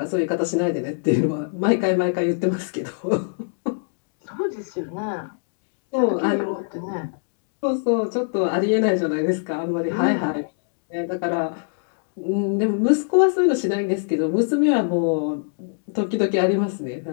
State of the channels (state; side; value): silent; right; digital silence